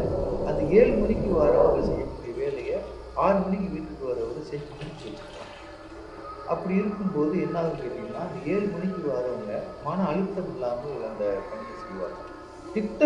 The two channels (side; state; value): both; identical; correlation 1.00